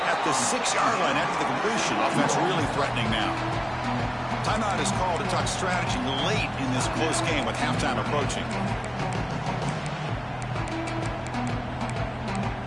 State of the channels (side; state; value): both; identical; correlation 1.00